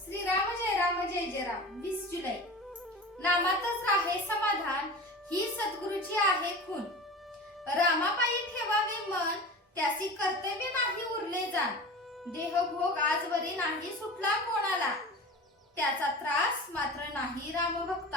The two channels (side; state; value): both; normal; correlation 0.34